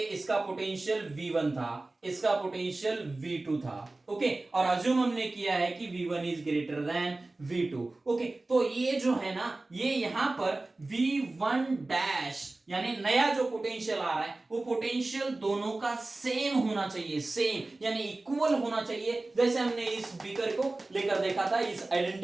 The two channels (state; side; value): quieter; left; 3.0 dB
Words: इसका पोटेंशियल V1 था, इसका पोटेंशियल V2 था। ओके, और अज्यूम हमने किया है कि V1 is greater than V2। Okay, तो ये जो है ना, ये यहां पर V1 डैश यानी नया जो पोटेंशियल आ रहा है, वो पोटेंशियल दोनों का सेम होना चाहिए, सेम यानी इक्वल होना चाहिए। जैसे हमने इस बीकर को लेकर देखा था, इस